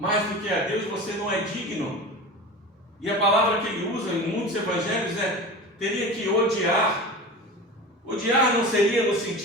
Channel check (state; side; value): normal; both; correlation 0.31